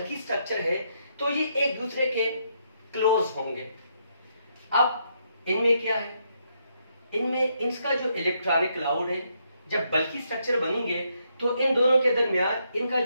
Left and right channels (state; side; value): inverted; both; correlation -0.76